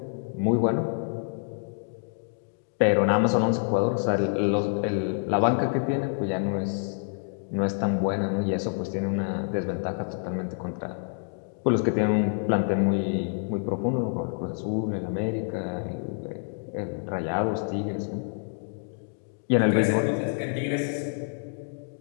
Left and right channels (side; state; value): right; silent; digital silence